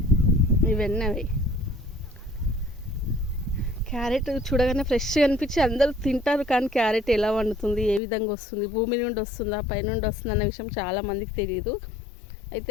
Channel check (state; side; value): drops out; right; at 8.0 s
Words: ఇవన్నీ అవి క్యారెట్ చూడగానే ఫ్రెష్గా అనిపించి అందరూ తింటారు, కానీ క్యారెట్ ఎలా వండుతుంది, ఏ విధంగా వస్తుంది, భూమి నుండి వస్తుందా పైనుండి వస్తుందా అన్న విషయం చాలామందికి తెలియదు.